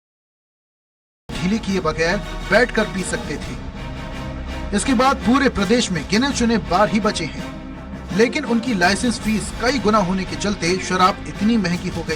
ढीली किए बगैर बैठकर पी सकते थे। इसके बाद पूरे प्रदेश में गिने चुने बार ही बचे हैं, लेकिन उनकी लाइसेंस फीस कई गुना होने के चलते शराब इतनी महंगी हो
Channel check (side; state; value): both; identical; correlation 1.00